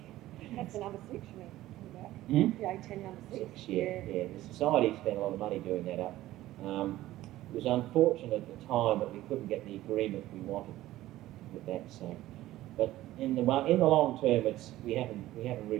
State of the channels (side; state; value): left; quieter; 15.5 dB